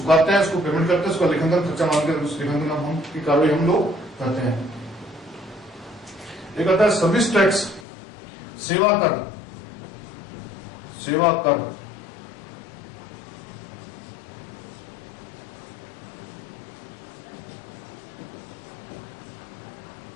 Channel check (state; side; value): drops out; right; at 7.9 s